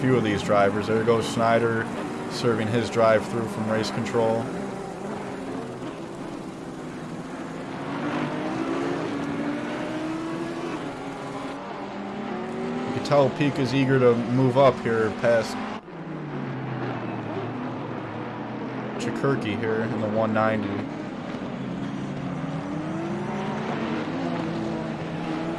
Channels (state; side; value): identical; both; correlation 1.00